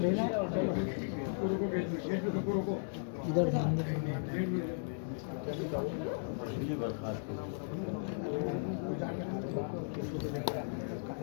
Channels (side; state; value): right; silent; digital silence